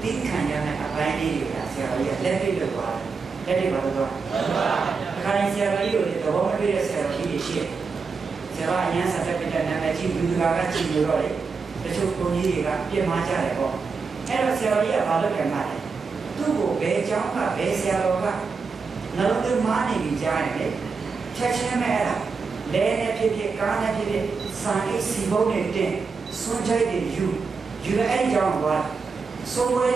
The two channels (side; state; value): left; quieter; 4.9 dB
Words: တိခံရ နဲ့အပိုင်းလေးတွေကဆရာကြီးကလက်တွေ့လုပ်သွားတယ်လက်တွေ့ပါတော့အခါတိုင်းဆရာကြီးကိုသဘောမတွေ့တဲ့ဆရာကြီးတွေရှိတယ်ဆရာအရန်ဆက်ပြတဲ့နာမည်ကြီးလူကကြည့်လို့တော့တချို့ကိုကြီးတွေကပြင်မာကြတယ်ပေါ့အဲ့တော့ဆရာကြီးကဘာလုပ်ကြမှာလဲသူ့ကိုဘယ်ကျောင်းကဘယ်ဆရာတော်ကနှလုံးသွင်းမာနေပြီကြားရင်လေချက်ချင်းပဲအဲ့ဒါလဲနဲ့ဖြစ်ဖြစ်ကားနဲ့ဖြစ်ဖြစ်စာရေးစီပုံးနဲ့တင်စွန့်ချိုက်တွေယူအဲ့ကြောင်းကစိုးဝဲ